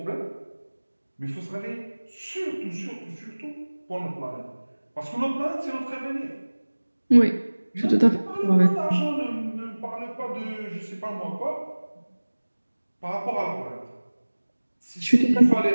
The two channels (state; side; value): inverted; both; correlation -1.00